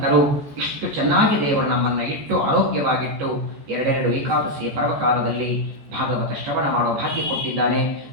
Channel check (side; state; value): left; late; 14 ms